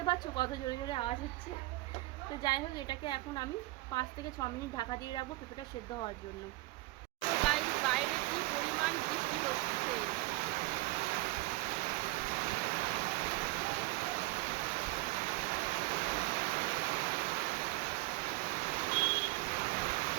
পাচ্ছ কত জোরে জোরে আওয়াজ হচ্ছে। তো যাই হোক, এটাকে এখন আমি 5 থেকে 6 মিনিট ঢাকা দিয়ে রাখবো পেঁপেটা সেদ্ধ হওয়ার জন্য। তো গাইস, বাইরে কি পরিমাণ বৃষ্টি হচ্ছে।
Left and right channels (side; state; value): left; quieter; 20.4 dB